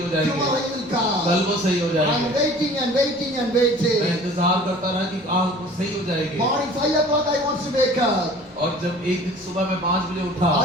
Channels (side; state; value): both; normal; correlation 0.47